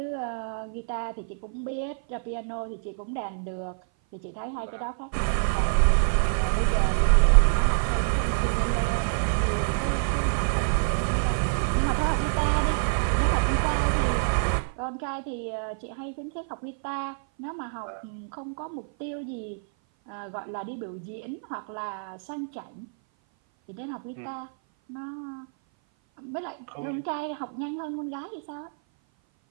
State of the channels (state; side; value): silent; left; 56 dB below the other